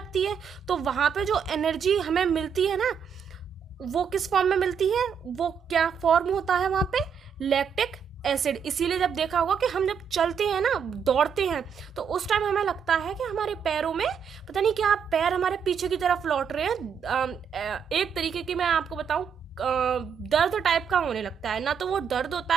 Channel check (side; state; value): left; quieter; 7.1 dB